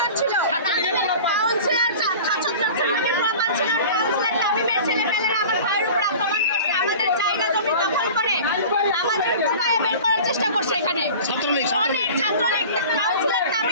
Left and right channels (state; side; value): inverted; both; correlation -0.39